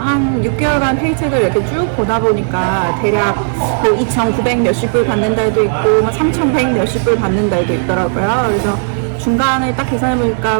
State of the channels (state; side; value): silent; left; digital silence